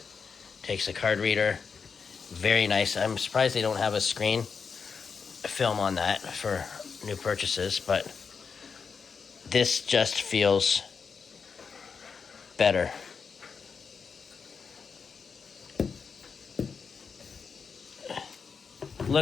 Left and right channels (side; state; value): right; quieter; 5.7 dB